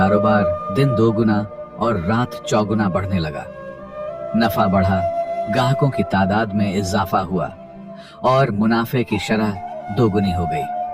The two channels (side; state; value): both; identical; correlation 1.00